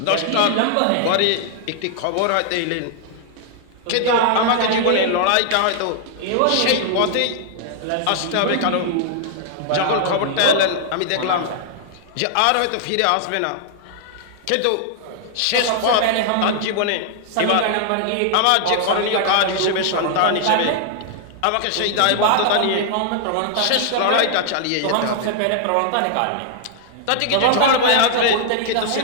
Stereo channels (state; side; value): different; both; correlation -0.01